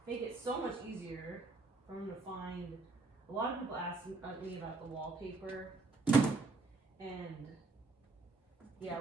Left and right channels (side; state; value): left; quieter; 3.6 dB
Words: it so much easier for them to find. A lot of people ask me about the wallpaper, and yeah,